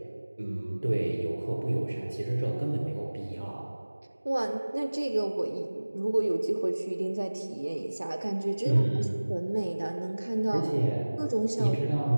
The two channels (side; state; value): both; inverted; correlation -1.00